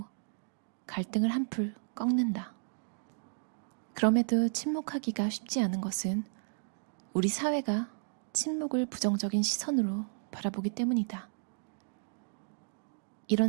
갈등을 한풀 꺾는다. 그럼에도 침묵하기가 쉽지 않은 것은 우리 사회가 침묵을 부정적인 시선으로 바라보기 때문이다.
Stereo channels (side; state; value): left; silent; digital silence